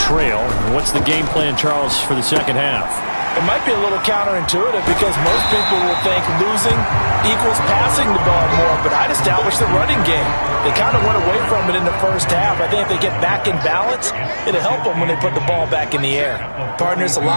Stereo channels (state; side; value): inverted; both; correlation -1.00